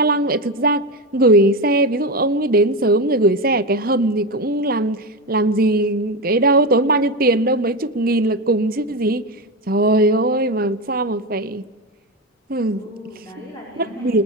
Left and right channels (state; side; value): normal; both; correlation 0.16